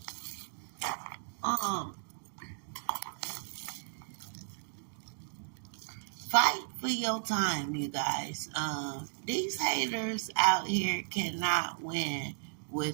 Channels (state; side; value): silent; left; digital silence